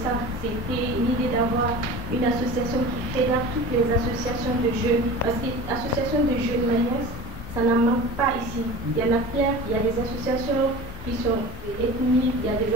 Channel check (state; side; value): normal; both; correlation 0.36